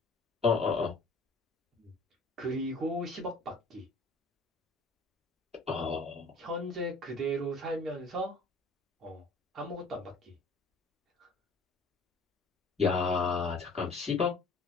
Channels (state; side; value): quieter; right; 3.2 dB